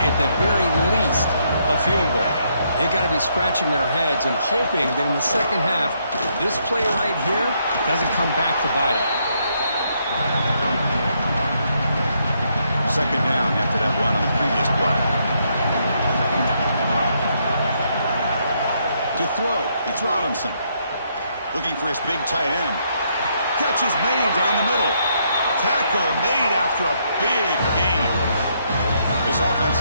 At the very least, a field goal. They've got to be scratching their heads and hoping that in the second half, this play right here doesn't come back to bite them. Second down after that run on the previous play. To throw, it's Robinson. Looking for his big tight end. Catch is made down the middle. Tackle made after a big gain. This offense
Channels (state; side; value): inverted; both; correlation -0.74